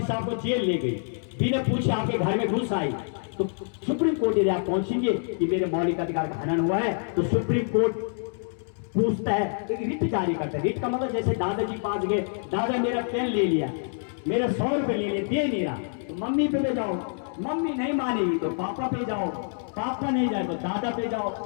से आपको जेल ले गई, बिना पूछे आपके घर में घुस आई, तो सुप्रीम कोर्ट यदि आप पहुंचेंगे कि मेरे मौलिक अधिकार का हनन हुआ है, तो सुप्रीम कोर्ट पूछता है, एक रिट जारी करता है। रिट का मतलब जैसे दादाजी पास गए, दादा मेरा पेन ले लिया, मेरा 100 रुपए ले लिया, दे नहीं रहा, तो मम्मी पे जाओ, मम्मी नहीं मानेगी तो पापा पे जाओ, पापा नहीं जाए तो दादा पे जाओ,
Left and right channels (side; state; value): right; silent; digital silence